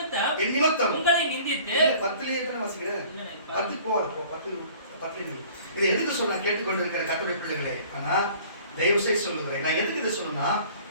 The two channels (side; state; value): both; inverted; correlation -0.50